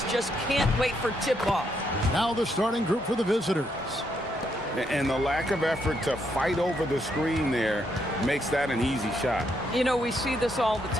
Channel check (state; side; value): normal; both; correlation 0.76